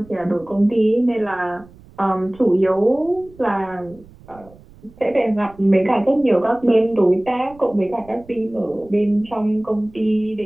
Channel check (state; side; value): noise; right; rumble, 24 dB below the sound